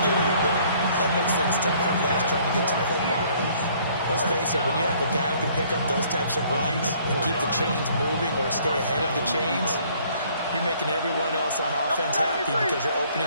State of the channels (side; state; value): both; inverted; correlation -0.60